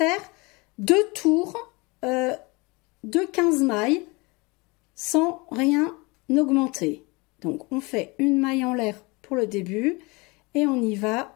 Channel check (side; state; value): right; quieter; 26.3 dB